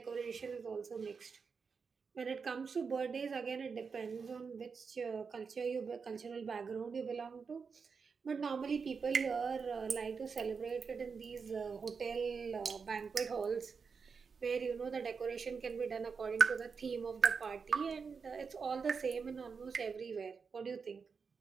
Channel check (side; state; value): left; quieter; 5.5 dB